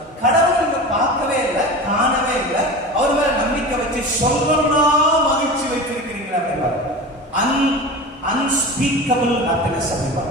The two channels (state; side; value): normal; both; correlation 0.31